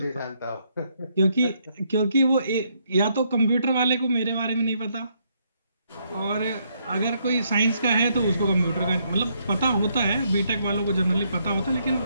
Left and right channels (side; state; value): both; inverted; correlation -0.74